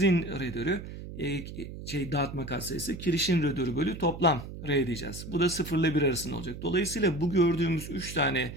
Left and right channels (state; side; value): noise; right; hum, 11 dB below the sound